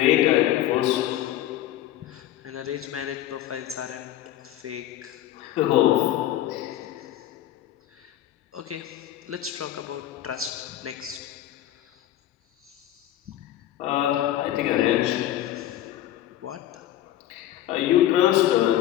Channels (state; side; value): quieter; right; 13.0 dB